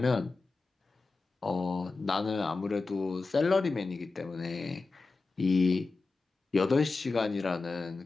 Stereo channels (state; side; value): quieter; right; 3.8 dB